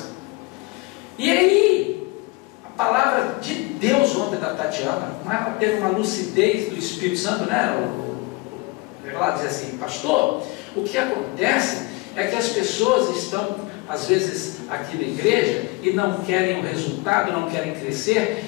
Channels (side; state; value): right; quieter; 24.3 dB